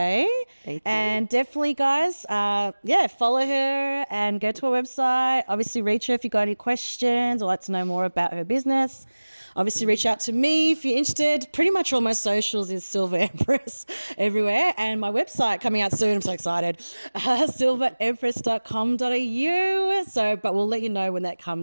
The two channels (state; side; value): inverted; both; correlation -1.00